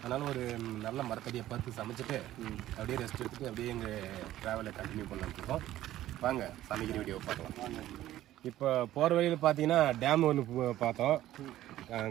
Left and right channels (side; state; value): left; quieter; 14.0 dB